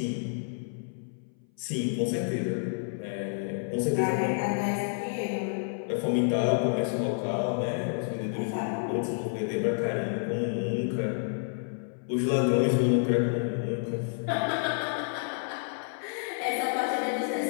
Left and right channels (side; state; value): right; silent; 58 dB below the other